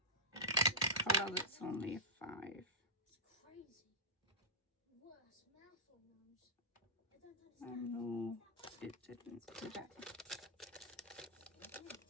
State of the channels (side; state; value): both; normal; correlation -0.13